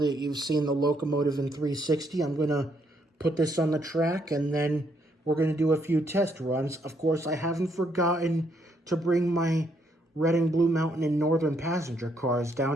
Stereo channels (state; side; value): normal; both; correlation 0.73